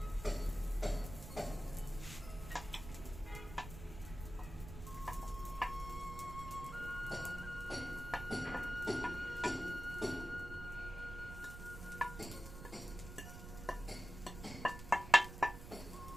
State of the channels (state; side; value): noise; right; rumble, 10 dB below the sound